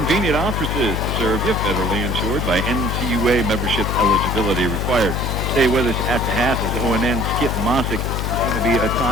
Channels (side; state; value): left; noise; hum, 1 dB below the sound